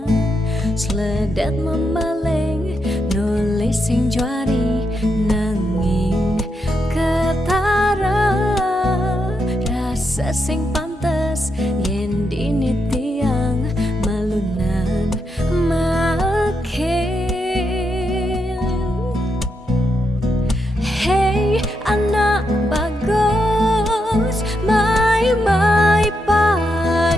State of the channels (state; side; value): normal; both; correlation 0.83